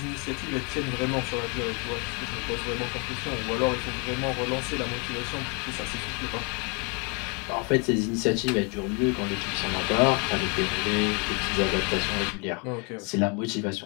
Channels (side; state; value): right; quieter; 33.7 dB